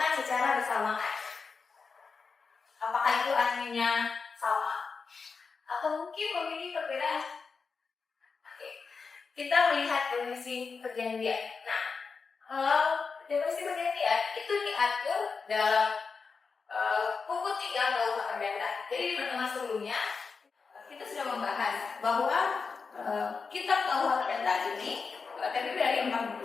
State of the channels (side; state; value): right; quieter; 5.0 dB